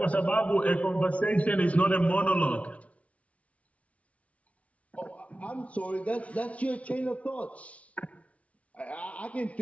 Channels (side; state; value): right; late; 0.065 ms